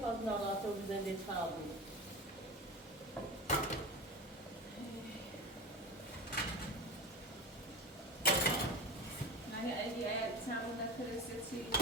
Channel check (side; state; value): both; normal; correlation 0.28